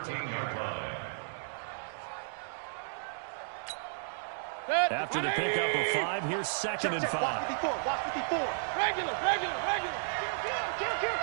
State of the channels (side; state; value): left; silent; digital silence